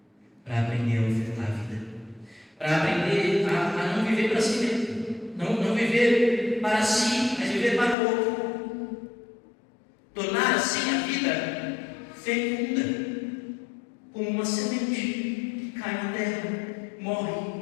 Para aprender a ofertar a vida. Para aprender a não viver para si mesmo. Não viver para si, mas viver para o outro. Tornar assim a vida fecunda, como uma semente que cai na terra,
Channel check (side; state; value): right; drops out; at 8.0 s